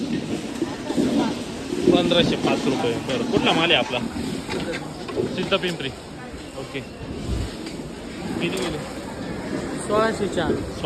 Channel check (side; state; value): both; identical; correlation 1.00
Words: 1505 रुपये. बरं कुठला माल आहे आपला? सिद्धपिंपरी. ओके. किती गेले?